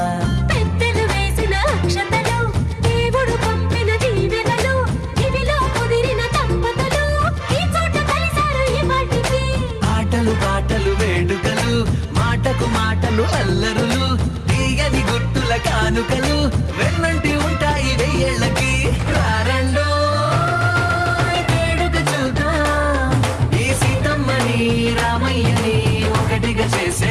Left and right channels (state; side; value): identical; both; correlation 1.00